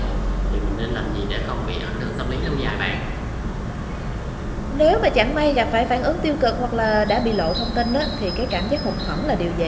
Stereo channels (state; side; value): identical; both; correlation 1.00